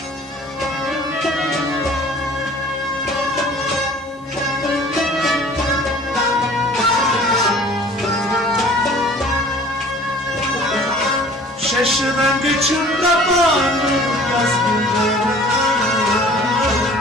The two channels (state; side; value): normal; both; correlation 0.49